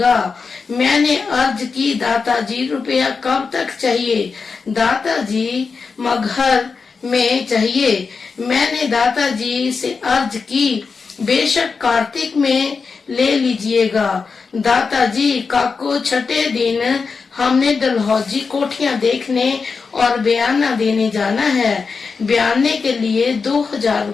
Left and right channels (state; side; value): quieter; right; 5.0 dB